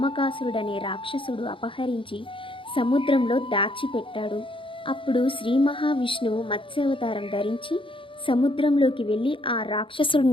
రాక్షసుడు అపహరించి సముద్రంలో దాచిపెట్టాడు. అప్పుడు శ్రీ మహావిష్ణువు మత్స్యావతారం ధరించి సముద్రంలోకి వెళ్ళి ఆ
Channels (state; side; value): late; right; 0.25 ms